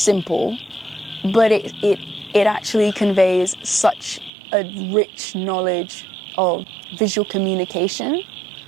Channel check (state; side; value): drops out; left; at 4.3 s